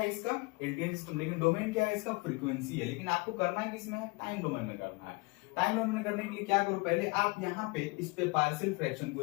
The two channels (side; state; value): right; quieter; 26.2 dB